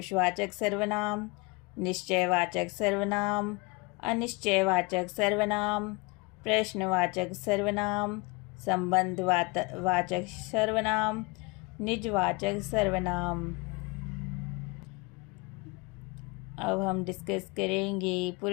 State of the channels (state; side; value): quieter; right; 26.6 dB